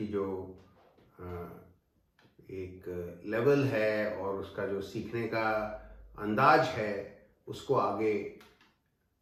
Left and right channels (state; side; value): identical; both; correlation 1.00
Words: जो एक लेवल है और उसका जो सीखने का अंदाज है उसको आगे